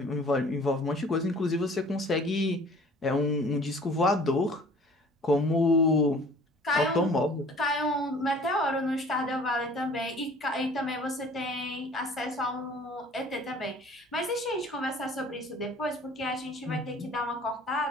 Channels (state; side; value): normal; both; correlation 0.50